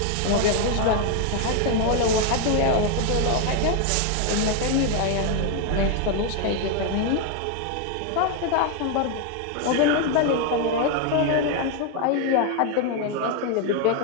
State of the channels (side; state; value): both; different; correlation 0.01